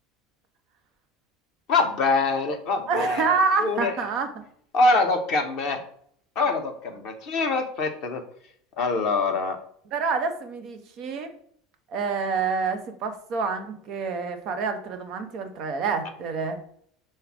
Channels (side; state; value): both; normal; correlation 0.33